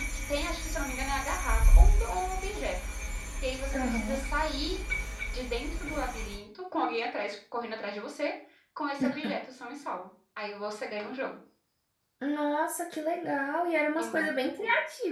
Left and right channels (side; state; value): both; identical; correlation 1.00